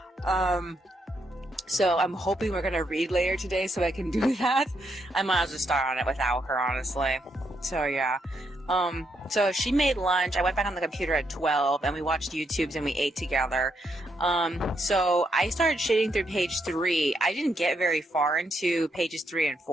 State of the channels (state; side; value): normal; both; correlation 0.78